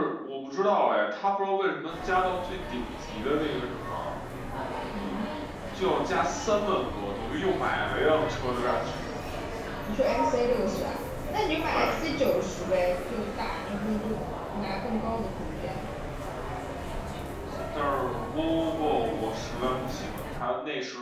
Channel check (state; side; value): identical; both; correlation 1.00